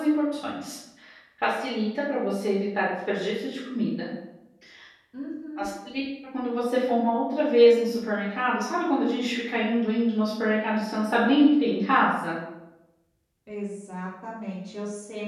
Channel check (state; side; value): identical; both; correlation 1.00